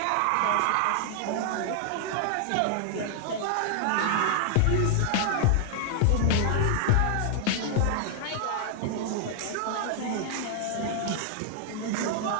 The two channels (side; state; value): both; different; correlation 0.00